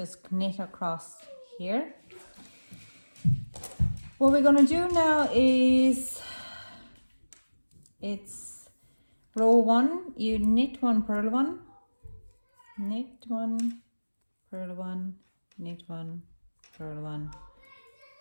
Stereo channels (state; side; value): inverted; both; correlation -1.00